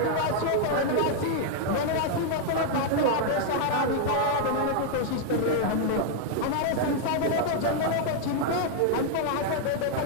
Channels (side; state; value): both; different; correlation 0.00